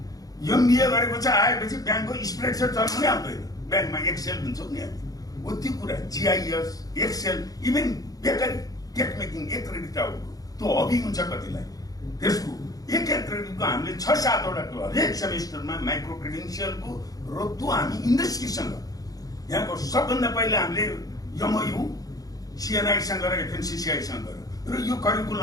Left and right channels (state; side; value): late; right; 0.18 ms